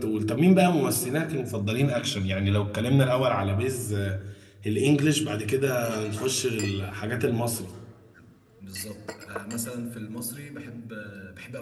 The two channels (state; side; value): identical; both; correlation 1.00